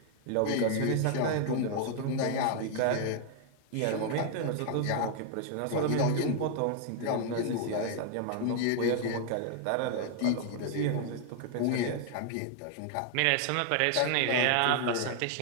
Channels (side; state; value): both; different; correlation 0.00